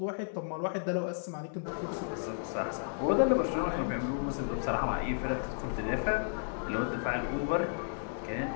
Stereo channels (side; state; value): right; silent; digital silence